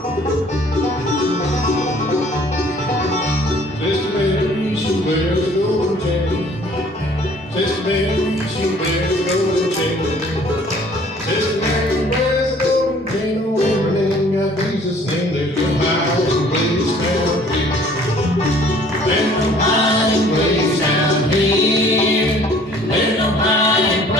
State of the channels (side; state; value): both; normal; correlation 0.55